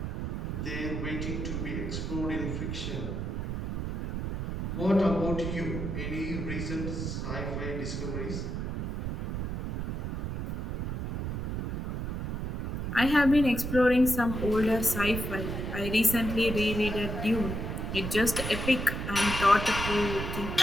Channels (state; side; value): noise; right; rumble, 3 dB below the sound